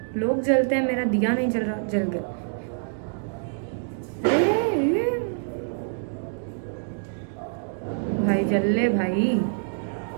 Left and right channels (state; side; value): silent; left; digital silence